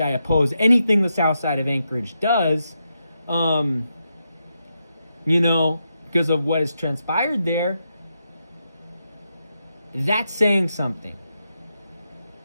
I oppose anything the south side of Anchorage does, because of what has transpired there. That's saying something.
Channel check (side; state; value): both; inverted; correlation -0.85